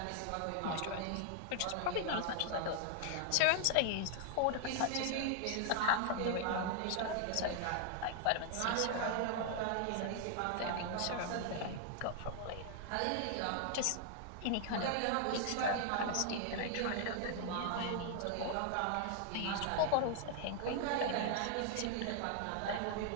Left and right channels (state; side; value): different; both; correlation 0.00